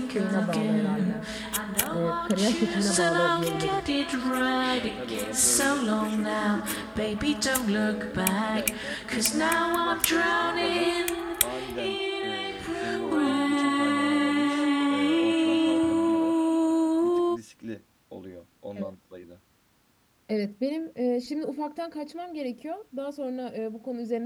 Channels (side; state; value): both; identical; correlation 1.00